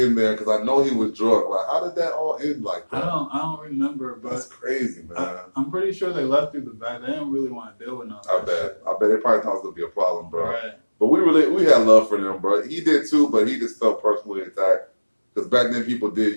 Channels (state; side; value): inverted; both; correlation -1.00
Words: there? Because I know he was drunk. Like, how did that all end like that? I don't remember, but that's crazy, man. I'm pretty sure they left through the back. They didn't really want to deal with nothing. I bet they probably thought it was gonna be a problem, bro. Right. But we had love for them, bro. He did too, but he just felt personally attacked. Because back then people